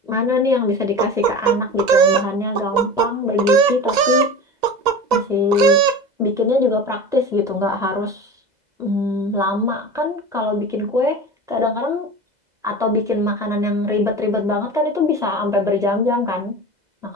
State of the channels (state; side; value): late; left; 2.0 ms